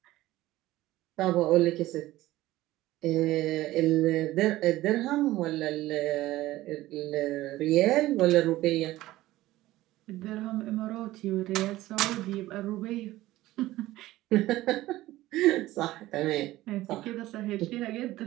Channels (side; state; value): left; quieter; 16.5 dB